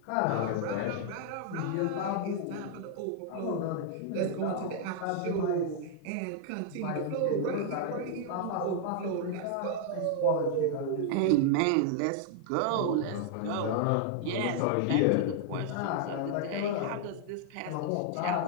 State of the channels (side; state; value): both; different; correlation -0.01